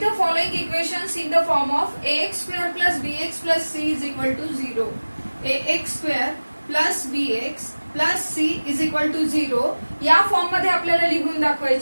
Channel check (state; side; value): inverted; both; correlation -1.00